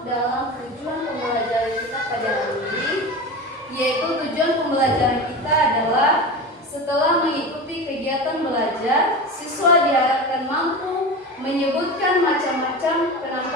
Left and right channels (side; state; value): both; normal; correlation 0.27